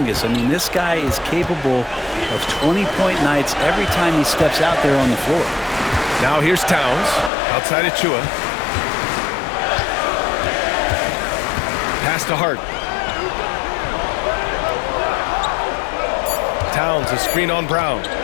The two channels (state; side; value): drops out; right; at 7.3 s